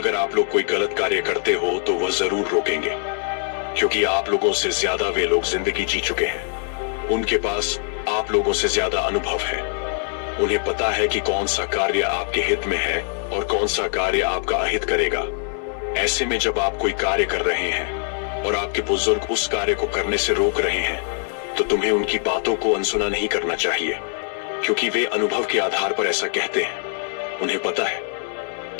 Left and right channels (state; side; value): silent; right; digital silence